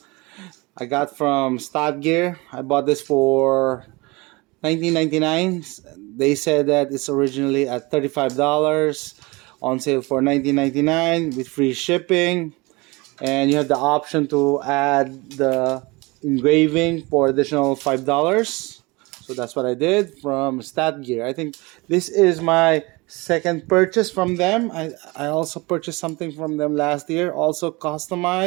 I got from Stadgear. I bought this for $19.99. They said that it's originally at $35, on sale for $19.99 with free shipping, and you have the option to add the engraving for additional $5. So that's what I did from Stadgear. I think this is my second purchase from them. I also purchased something from them last year, also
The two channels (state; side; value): quieter; left; 24.6 dB